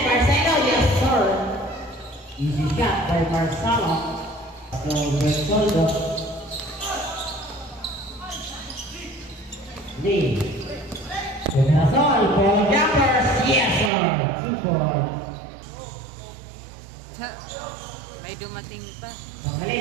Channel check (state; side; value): drops out; left; at 13.9 s